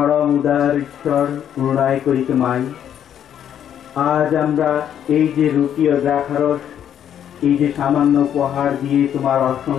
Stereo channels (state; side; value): quieter; right; 9.6 dB